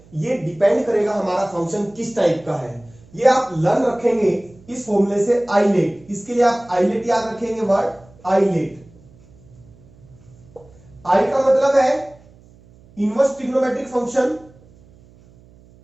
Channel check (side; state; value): right; noise; hum, 26 dB below the sound